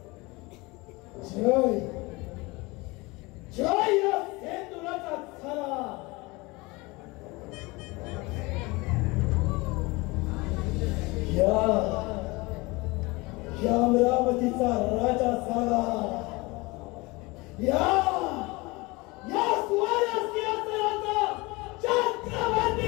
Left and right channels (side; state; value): right; quieter; 24.0 dB